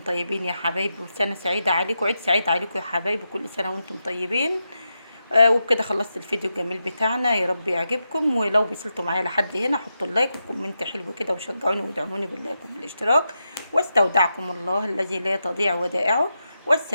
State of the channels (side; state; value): both; inverted; correlation -0.87